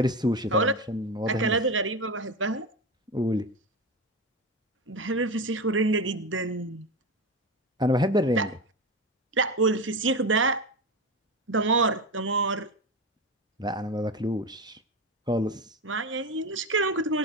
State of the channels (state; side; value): normal; both; correlation 0.20